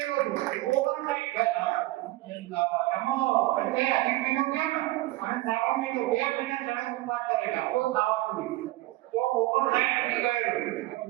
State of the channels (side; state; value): left; quieter; 18.4 dB